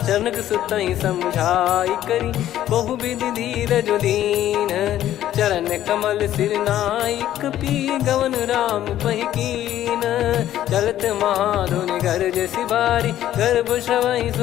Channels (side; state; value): right; quieter; 12.4 dB